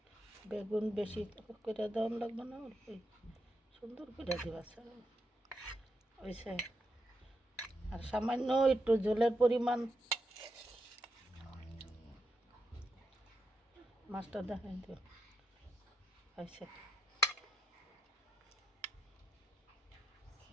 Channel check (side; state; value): both; normal; correlation 0.85